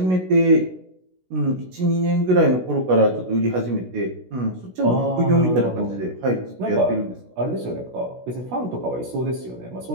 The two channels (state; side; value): late; left; 16 ms